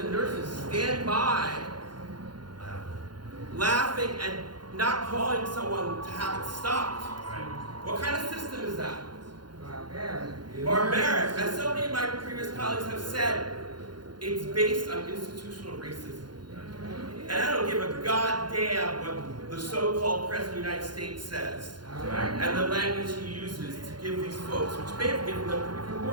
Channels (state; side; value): late; left; 0.71 ms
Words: and nurses stand by laughing and not calling someone to have it stopped? What kind of system is that? Barbaric. As so many of my previous colleagues have said, it's based on institutional racism. And I don't give a goddamn what the so-called President of the United States says and the language he uses to give these folks, which may have given them even